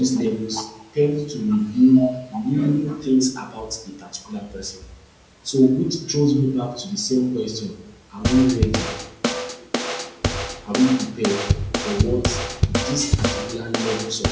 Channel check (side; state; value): both; identical; correlation 1.00